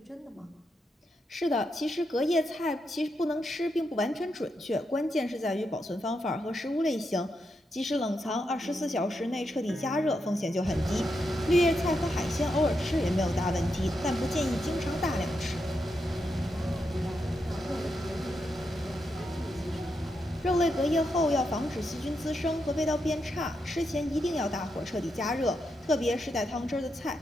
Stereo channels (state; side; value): normal; both; correlation 0.84